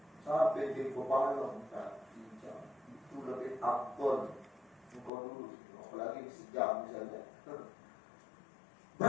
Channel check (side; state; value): right; drops out; at 5.1 s